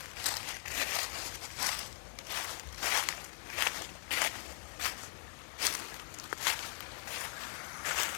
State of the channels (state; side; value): silent; right; 50 dB below the other